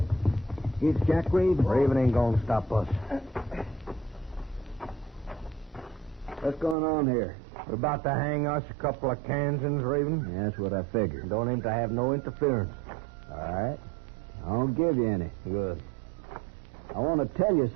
It's Jack Raven. Raven ain't gonna stop us. What's going on here? We're about to hang us a couple of Kansans, Raven. Yeah, that's what I figured. Don't aim to have no interference. All right. I won't give you any. Good. I want to tell you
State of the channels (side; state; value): left; drops out; at 6.8 s